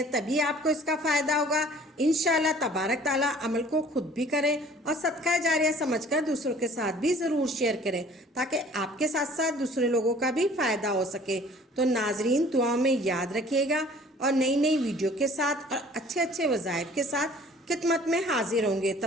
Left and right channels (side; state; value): both; normal; correlation 0.51